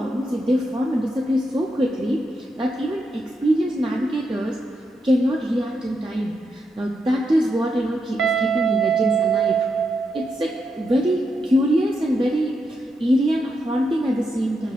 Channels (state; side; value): normal; both; correlation 0.83